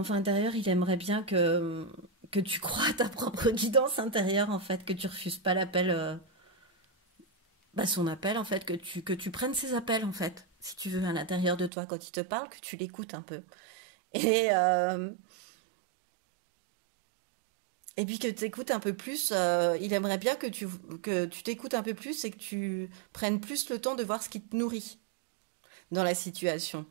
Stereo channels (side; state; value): left; drops out; at 11.7 s